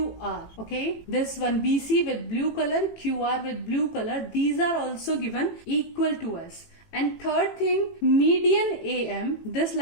Okay, this one BC with blue color, QR with blue color, these are also given equal to us. And third thing, median AM, this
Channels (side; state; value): right; late; 18 ms